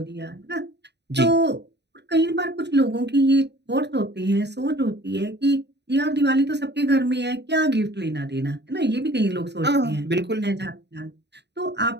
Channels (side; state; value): left; late; 0.50 ms